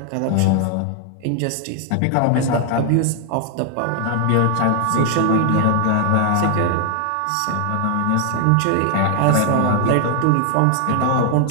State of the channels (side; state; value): both; different; correlation 0.00